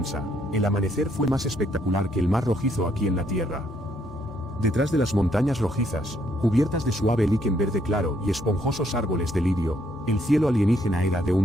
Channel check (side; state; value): both; normal; correlation 0.71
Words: el amanecer fue más espectacular que el mar rojizo aquí en la Tierra. Detrás de las montañas rojizas, cubiertas de suave líquen verde claro y esponjosos árboles de lirio, el cielo alienígena era de